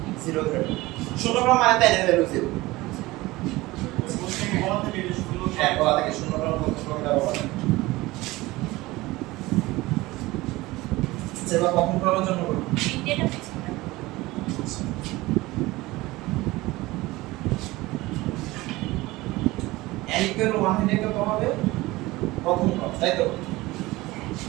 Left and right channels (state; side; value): quieter; left; 19.8 dB